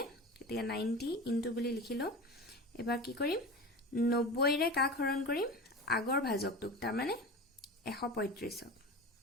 গতিকে 90 ইনটু বুলি লিখিলো। এবাৰ কি কৰিম? 90ৰে কাক হৰণ কৰিম? আগৰ ভাজকটোক, তাৰমানে 135ক।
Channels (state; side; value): normal; both; correlation 0.30